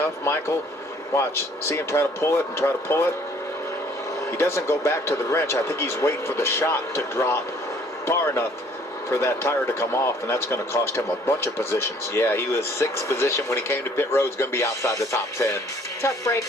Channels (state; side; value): normal; both; correlation 0.58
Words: Michael. Watch. See him try to pull it and try to pull it. He doesn't go back to the wrench. I think he's waiting for the shot to drop far enough for that tire to come off, and that's going to cost him a bunch of positions. Yeah, he was 6th position when he came to pit road. He's going to be outside the top 10. Tough break